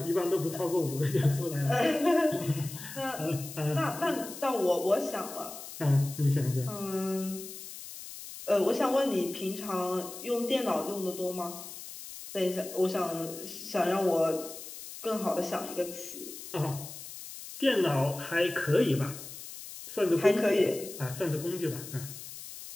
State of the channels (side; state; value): left; noise; hiss, 12 dB below the sound